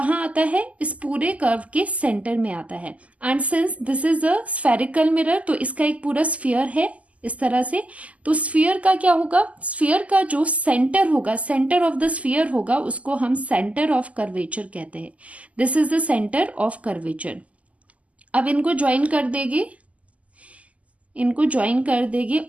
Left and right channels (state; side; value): late; left; 0.070 ms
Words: आता है, इस पूरे कर्व के सेंटर में आता है। And since this is a spherical mirror, तो इसका एक पूरा स्फीयर है इस तरह से। तो स्फीयर का क्या होगा, स्फीयर का जो सेंटर होगा, सेंटर ऑफ द स्फीयर होगा, उसको हम सेंटर ऑफ कर्वेचर कहते हैं। This is the centre of curvature. अब इनको ज्वाइन कर देंगे, इनको ज्वाइन कर देंगे,